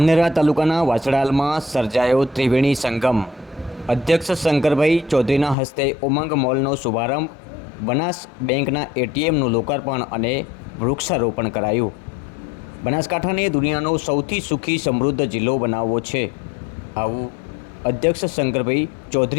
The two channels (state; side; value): drops out; right; at 5.6 s